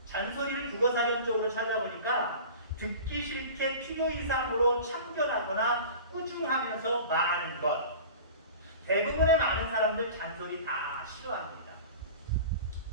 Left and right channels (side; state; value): both; inverted; correlation -0.38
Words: 잔소리를 국어사전적으로 찾아보니까 듣기 싫게 필요 이상으로 참견하거나 꾸중하면서 말하는 것. 대부분의 많은 사람들 잔소리 다 싫어합니다.